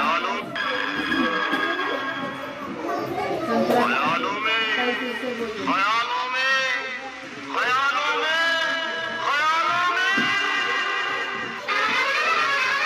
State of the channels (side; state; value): both; identical; correlation 1.00